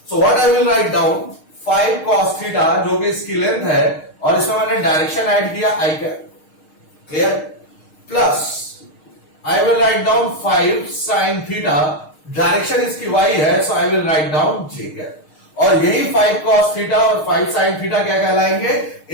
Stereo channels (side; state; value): right; late; 6.5 ms